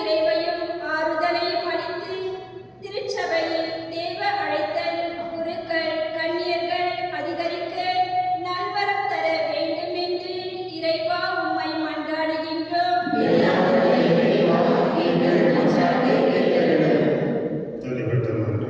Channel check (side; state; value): both; identical; correlation 1.00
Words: ஆறுதலையும் அளித்து திருச்சபையில் தேவ அழைத்தல், குருக்கள், கன்னியர்கள் அதிகரிக்க நல்வரம் தர வேண்டும் என்று இறைவா உம்மை மன்றாடுகின்றோம். தனிப்பட்ட